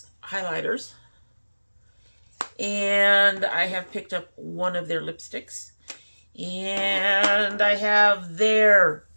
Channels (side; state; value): both; inverted; correlation -1.00